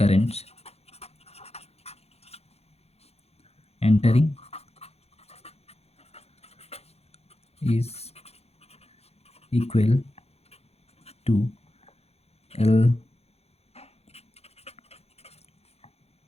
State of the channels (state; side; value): late; right; 0.30 ms